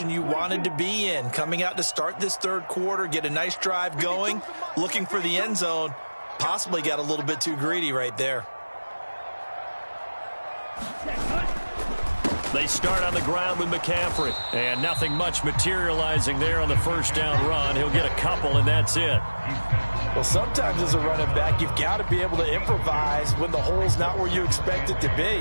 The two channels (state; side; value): inverted; both; correlation -1.00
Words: you wanted to be in. Coming out to start this 3rd quarter, get a nice drive going, looking for the end zone. Possibly got a little bit too greedy right there. They start on the ground with McCaffrey. And nothing much materializing there on the first down run. He'll get a couple, and that's it. Well, sometimes as a running back, you've got to be able to improvise when the hole's not where you expect it to